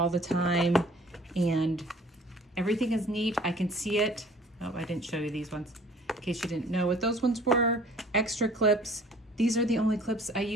the time. And everything is neat. I can see it. Oh, I didn't show you these ones in case you didn't know what those ones were. Extra clips. These are the only clips I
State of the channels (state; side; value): normal; both; correlation 0.52